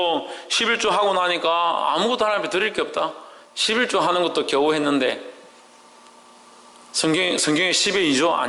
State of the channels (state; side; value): identical; both; correlation 1.00